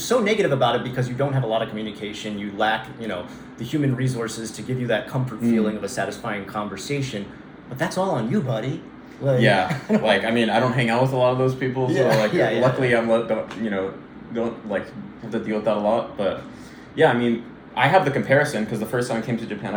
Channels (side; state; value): both; identical; correlation 1.00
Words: negative about it? Because you don't have a lot of communication, you lack, the human resources to give you that comfort feeling of a satisfying conversation, but that's all on you, buddy. Like, yeah, like, I mean, I don't hang out with a lot of those people, so luckily I'm, don't like have to deal with that a lot, but yeah, I mean, I have the comparison because the first time I came to Japan,